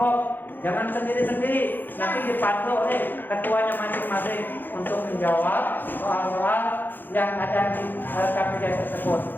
jangan sendiri-sendiri. Nanti dipandu oleh ketuanya masing-masing untuk menjawab soal-soal yang ada di LKPD tersebut.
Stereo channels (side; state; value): right; late; 0.091 ms